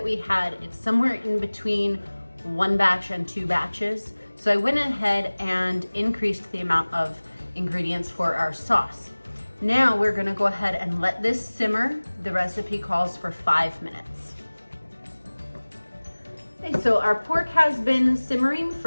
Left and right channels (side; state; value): both; inverted; correlation -1.00